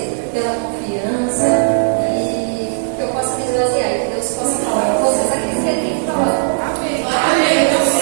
pela confiança e que eu possa me esvaziar e que Deus possa falar com vocês aquilo que Ele tem que falar. Amém.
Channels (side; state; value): left; silent; 56 dB below the other